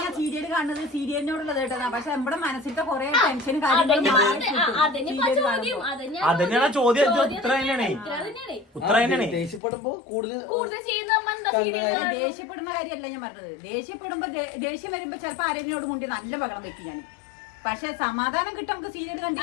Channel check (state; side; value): drops out; right; at 9.6 s